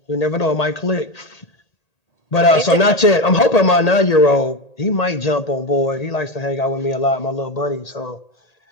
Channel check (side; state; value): right; late; 1.8 ms